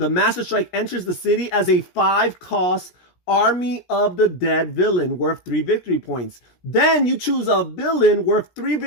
Master Strike enters the city as a 5-cost Army of the Dead villain worth 3 victory points. Then you choose a villain worth 3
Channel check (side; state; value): right; late; 17 ms